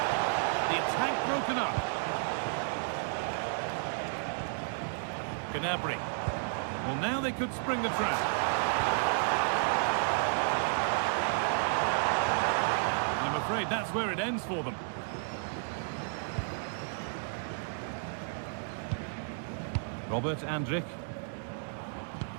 The attack broken up. Gnabry. Well, now they could spring the trap. And I'm afraid that's where it ends for them. Robert Andrick.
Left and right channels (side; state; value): left; silent; digital silence